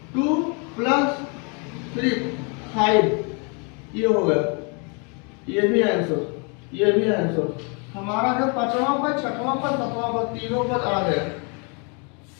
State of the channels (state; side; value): quieter; right; 34.8 dB